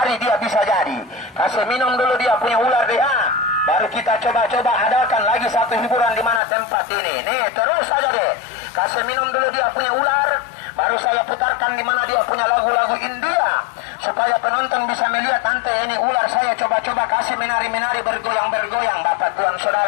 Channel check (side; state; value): right; drops out; at 6.4 s